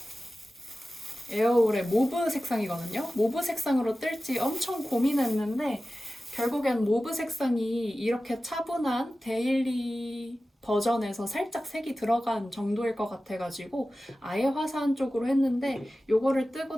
에어울의 모브 색상이거든요. 모브 색상으로 뜰지 엄청 고민했는데 결국엔 모브 색상이 이렇게 차분한 데일리 버전에서 살짝 색이 들어간 정도일 것 같아가지고 아예 화사한 쪽으로 했는데 요거를 뜨고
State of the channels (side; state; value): both; normal; correlation 0.95